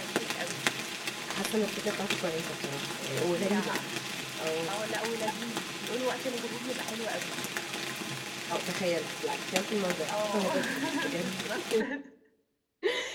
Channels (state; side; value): identical; both; correlation 1.00